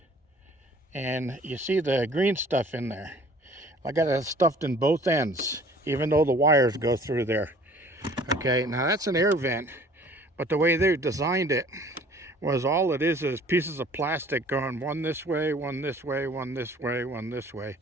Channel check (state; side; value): normal; both; correlation 0.52